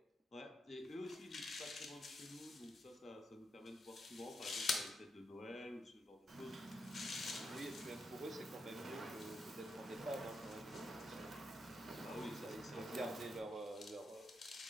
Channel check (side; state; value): both; normal; correlation 0.82